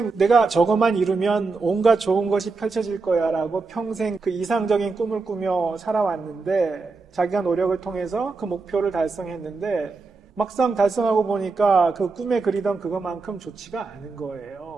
내가 저것만 이루면 온갖 좋은 것이 펼쳐질 거야 라고 평생 그 이상적인 꿈을 꾸며 살아왔는데 자기가 노력을 통해서 그 목표를 달성했는데 막상 달성하고 보니까 그 꿈에 그리던 그것만큼 좋지가 않은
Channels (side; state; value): left; quieter; 4.1 dB